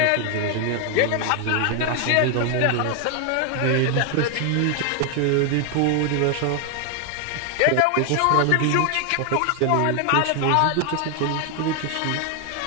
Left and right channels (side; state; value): both; different; correlation 0.01